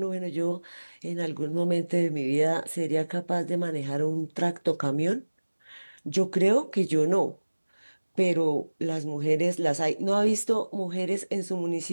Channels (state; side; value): inverted; both; correlation -1.00